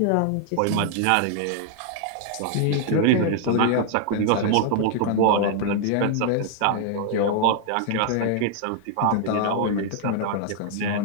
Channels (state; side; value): different; both; correlation 0.00